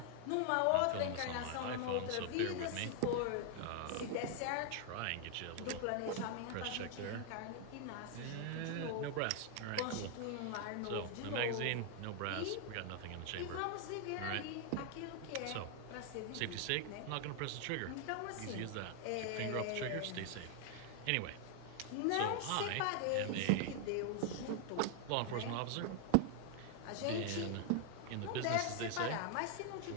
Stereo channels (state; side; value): different; both; correlation 0.00